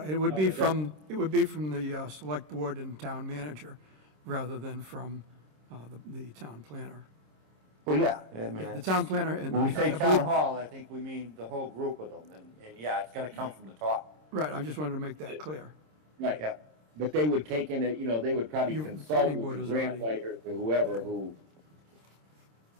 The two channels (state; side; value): late; left; 26 ms